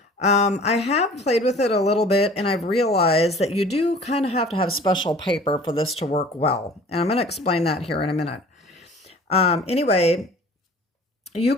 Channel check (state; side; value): normal; both; correlation 0.47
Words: I have played with it a little bit, and I've realized that you do kind of have to have special paper for this to work well, and I'm going to explain that here in a minute. Anyway, you